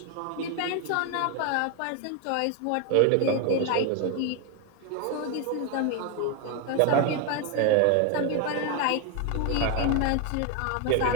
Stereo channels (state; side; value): different; both; correlation 0.01